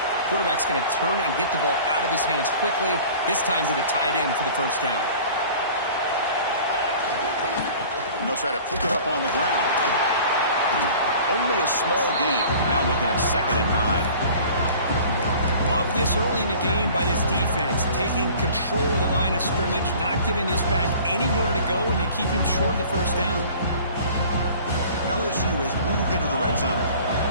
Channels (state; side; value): inverted; both; correlation -0.46